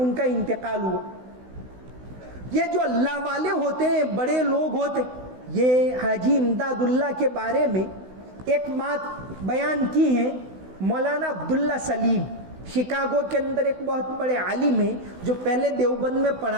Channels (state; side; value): late; left; 16 ms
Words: کا انتقال ہوا. یہ جو اللہ والے ہوتے ہیں، بڑے لوگ ہوتے ہیں، یہ حاجی امداد اللہ کے بارے میں ایک بات بیان کی ہے مولانا عبداللہ سلیم. شکاگو کے اندر ایک بہت بڑے عالم ہیں جو پہلے دیوبند میں